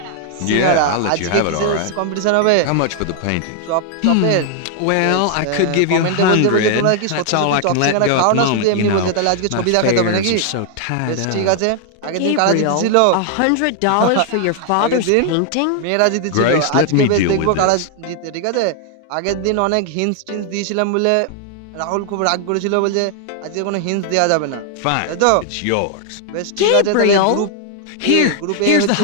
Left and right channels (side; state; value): both; different; correlation 0.00